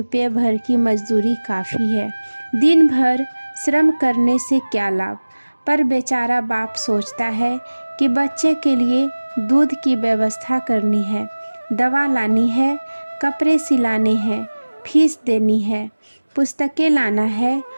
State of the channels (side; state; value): both; inverted; correlation -1.00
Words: भर की मजदूरी काफ़ी है। दिन भर श्रम करने से क्या लाभ? पर बेचारा बाप सोचता है कि बच्चे के लिए दूध की व्यवस्था करनी है, दवा लानी है, कपड़े सिलाने हैं, फीस देनी है, पुस्तकें लाना है